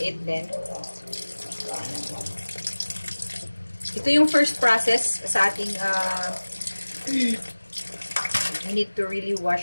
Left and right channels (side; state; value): both; inverted; correlation -1.00